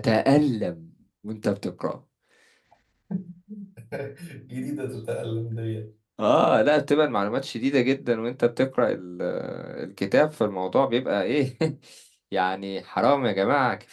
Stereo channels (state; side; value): identical; both; correlation 1.00